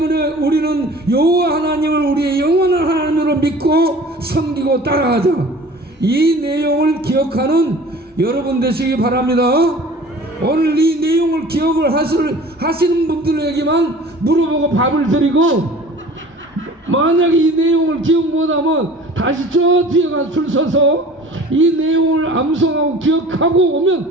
우리는 여호와 하나님을 우리의 영원한 하나님으로 믿고 섬기고 따라가자. 이 내용을 기억하는 여러분 되시기 바랍니다. 오늘 이 내용을 기억을 하시는 분들에게만 물어보고 밥을 드리고, 만약에 이 내용을 기억 못하면 다시 저 뒤에 가서 줄 서서 이 내용을 암송하고 기억하고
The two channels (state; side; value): normal; both; correlation 0.44